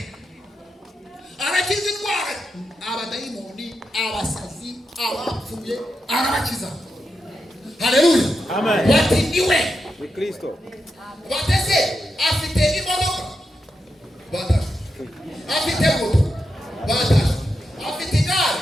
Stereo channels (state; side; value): normal; both; correlation 0.86